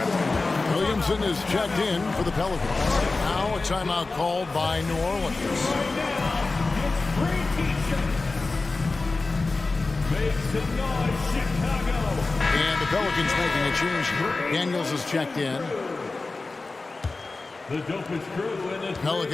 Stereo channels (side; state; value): right; quieter; 3.6 dB